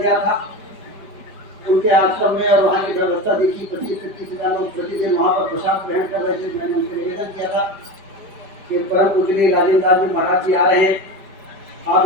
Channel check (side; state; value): left; late; 5.1 ms